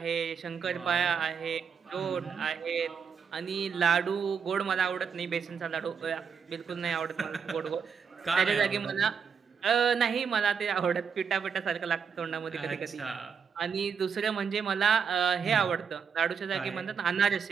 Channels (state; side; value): quieter; left; 6.6 dB